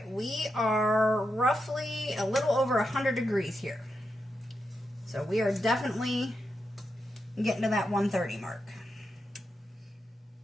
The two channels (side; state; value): both; normal; correlation 0.86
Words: we are roughly a little over 100 degrees here. So we are definitely getting to that 130 mark.